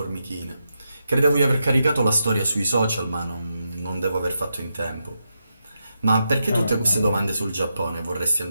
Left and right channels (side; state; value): both; inverted; correlation -0.86